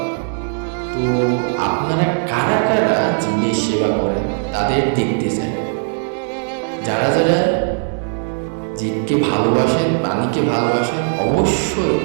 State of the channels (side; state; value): left; silent; digital silence